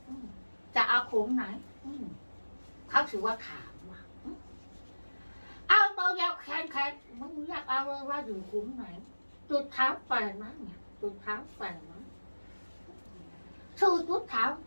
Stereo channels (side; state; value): both; inverted; correlation -1.00